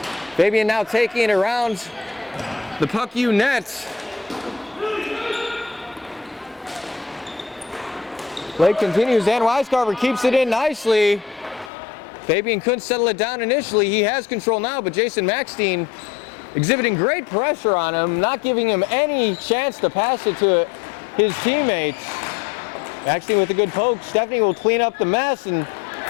Fabian now taking it around the Puck U net. Play continues, and Weiscarver keeps it in nicely. Fabian couldn't settle it down initially. He has control now, but Jason Maxstein exhibiting great pressure on him, not giving him any chance to pass it to his teammates. Maxstein with a good poke. Stephanie will clean up the mess, and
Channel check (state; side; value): drops out; right; at 11.7 s